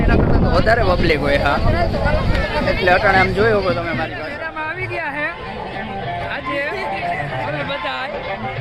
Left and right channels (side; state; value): both; identical; correlation 1.00